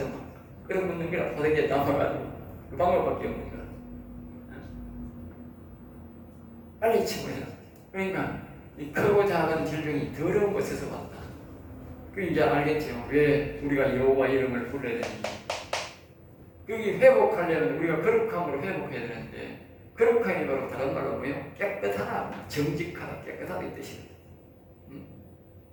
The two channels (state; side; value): identical; both; correlation 1.00